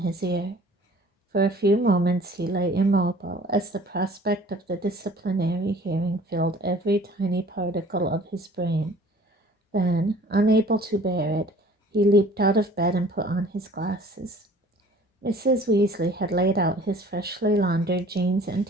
ear. For a few moments he lay immobile, as the prospect of the disciplinary hearing filled every tiny particle of his brain. Then, unable to bear it, he leaped out of bed and put on his glasses. Mrs. Weasley had laid out his freshly laundered jeans and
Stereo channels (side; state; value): both; normal; correlation 0.50